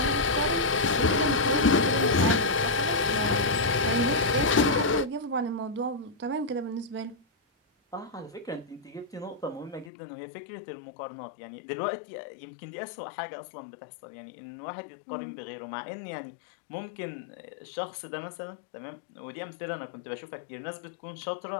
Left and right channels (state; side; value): drops out; right; at 9.9 s